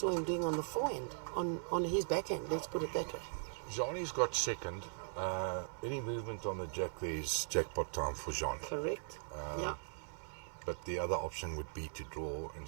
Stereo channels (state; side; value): silent; left; 51 dB below the other